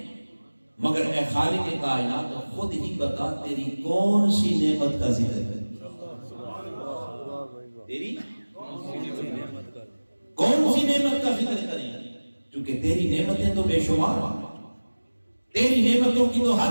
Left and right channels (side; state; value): both; inverted; correlation -1.00